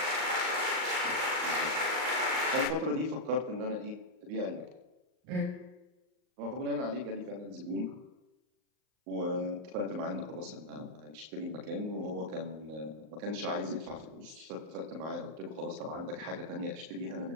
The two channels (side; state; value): left; late; 39 ms